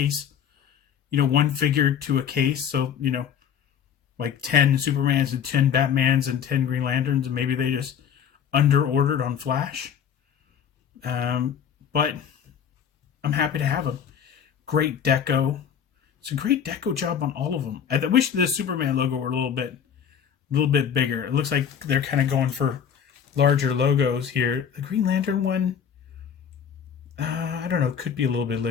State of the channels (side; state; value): right; quieter; 8.1 dB